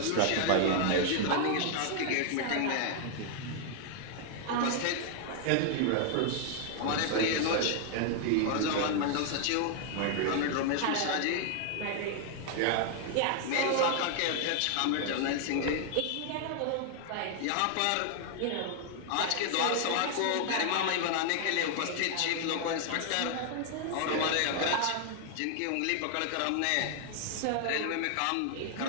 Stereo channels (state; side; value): different; both; correlation 0.00